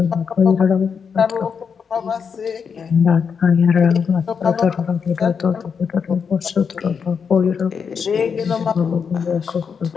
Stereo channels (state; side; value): quieter; right; 6.4 dB